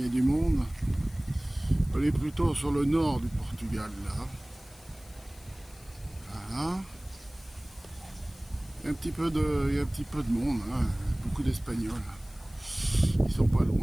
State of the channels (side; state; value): left; noise; hiss, 24 dB below the sound